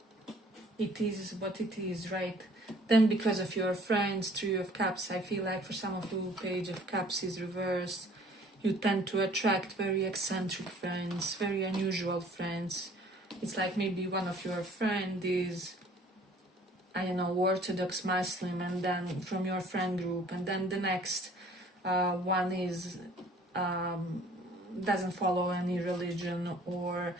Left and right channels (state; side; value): normal; both; correlation 0.54